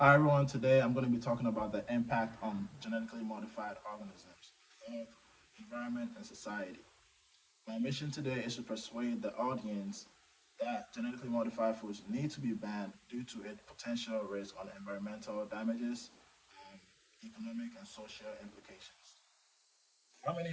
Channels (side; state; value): both; identical; correlation 1.00